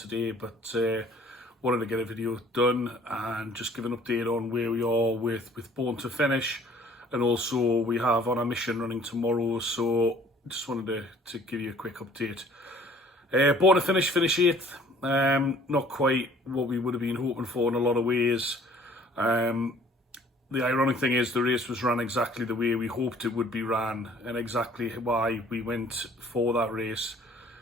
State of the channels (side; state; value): both; normal; correlation 0.54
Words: but wanted to get a video done and just give an update on where we are with Born to Finish, and also we have on our mission running tomorrow, so just wanted to give you a quick update. Born to Finish, finish 8th, not quite what we would have been hoping for in a lot of ways. The ironic thing is the race was run exactly the way we hoped it would be ran, and exactly why we went for that race.